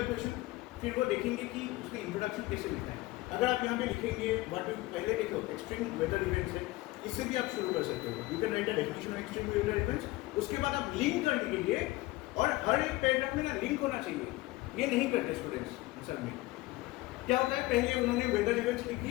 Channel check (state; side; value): quieter; right; 19.7 dB